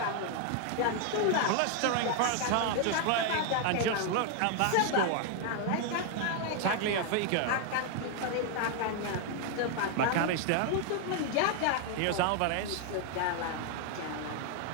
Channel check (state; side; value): different; both; correlation 0.00